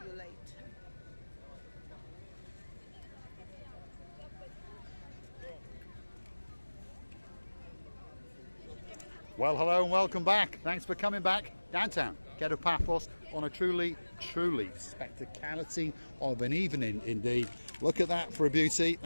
later. Well, hello and welcome back. Thanks for coming back downtown Kato Paphos on a truly spectacality of an evening indeed. Look at that for a beauty.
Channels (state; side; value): inverted; both; correlation -1.00